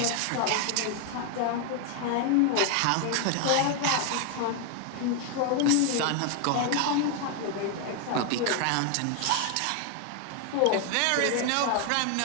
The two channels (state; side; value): different; both; correlation 0.01